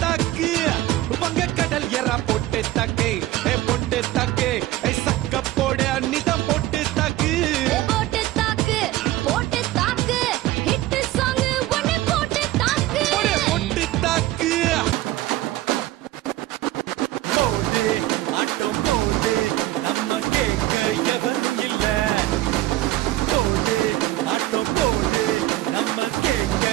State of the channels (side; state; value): left; quieter; 16.0 dB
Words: தாக்கு வங்க கடல் எறா பொட்டு தாக்கு பொட்டு தாக்கு சக்க போட அன்னிதான் பொட்டு தாக்கு போட்டு தாக்கு போட்டு தாக்கு ஹிட் சாங் ஒன்னு போட்டு தாக்கு பொட்டு தாக்கு போடு ஆட்டம் போடு நம்ம கேட்க எவரும் இல்ல. போடு ஆட்டம் போடு நம்ம கேட்க